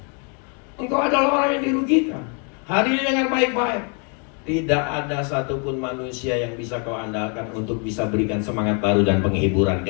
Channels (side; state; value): right; quieter; 38.2 dB